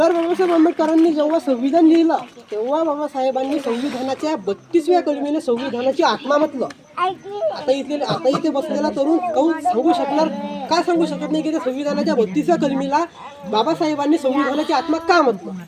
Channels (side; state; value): both; identical; correlation 1.00